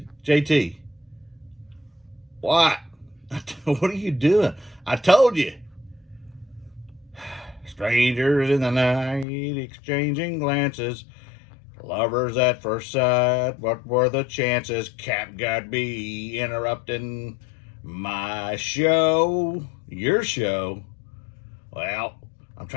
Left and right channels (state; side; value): drops out; right; at 9.2 s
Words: JT, what? What are you doing? I told you. Strangers in the night, exchanging glances. Lovers at first sight, what were the chances? CapGuy be interrupting my show, your show. Well, I'm